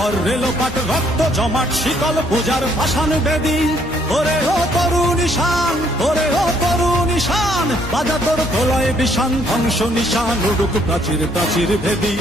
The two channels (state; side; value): normal; both; correlation 0.66